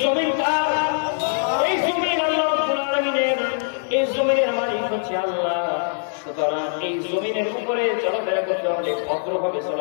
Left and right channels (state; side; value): silent; right; 64 dB below the other